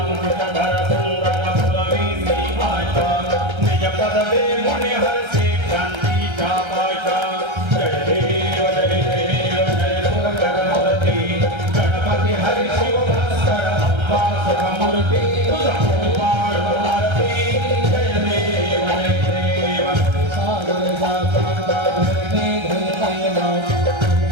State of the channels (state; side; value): late; left; 1.3 ms